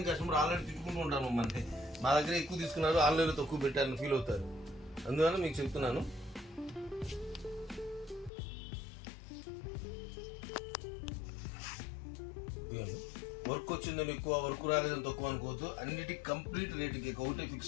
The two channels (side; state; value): right; drops out; at 8.3 s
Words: కస్టమర్ ఆన్లైన్ తిట్టుకుంటూ ఉంటాను మమ్మల్ని. మా దగ్గర ఎక్కువ తీసుకున్నారు, ఆన్లైన్లో తక్కువ పెట్టారని ఫీల్ అవుతారు. అందువల్ల మీకు చెప్తున్నాను. వర్క్ వచ్చిందని ఎక్కువ, వర్క్ రాలేదని తక్కువ అనుకోవద్దు. అన్నిటికీ కంప్లీట్ రేటుకి ఒకటే